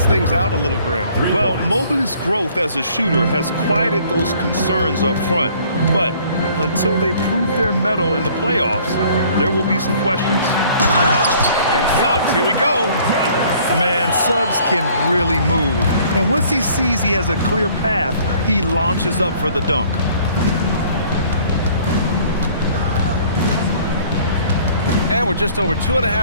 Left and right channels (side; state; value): both; inverted; correlation -0.56